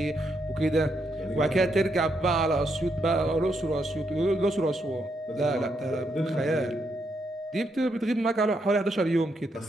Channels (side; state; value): both; normal; correlation 0.79